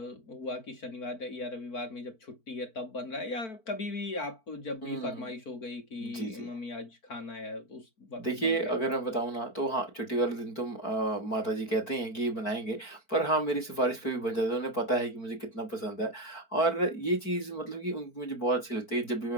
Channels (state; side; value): late; right; 4.5 ms